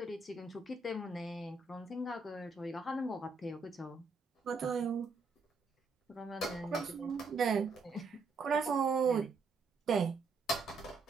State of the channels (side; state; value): left; quieter; 4.0 dB